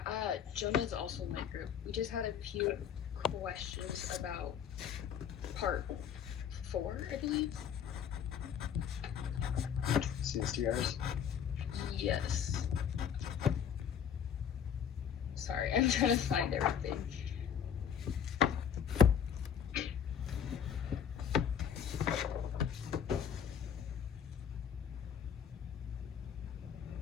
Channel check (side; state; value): right; quieter; 8.2 dB